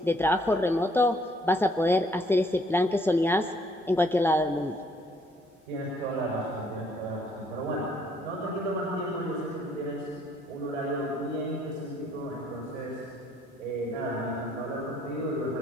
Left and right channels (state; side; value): normal; both; correlation 0.65